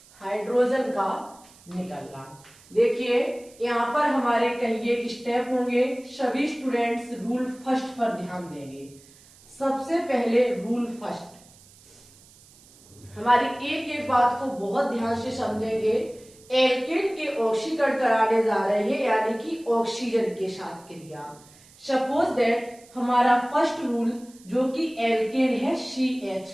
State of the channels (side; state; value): right; noise; hiss, 25 dB below the sound